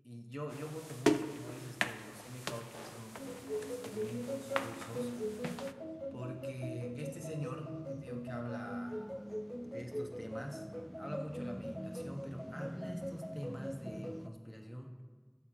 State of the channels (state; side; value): identical; both; correlation 1.00